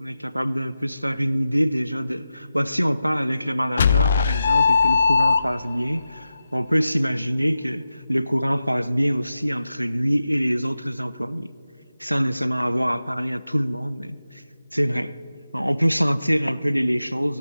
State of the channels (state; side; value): inverted; both; correlation -0.92